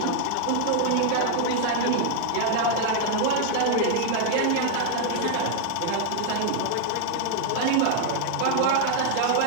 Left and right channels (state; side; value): different; both; correlation 0.00